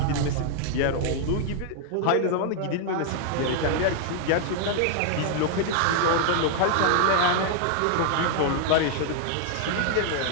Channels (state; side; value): different; both; correlation 0.00